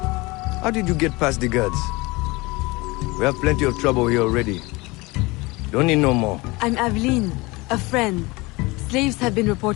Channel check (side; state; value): right; quieter; 23.6 dB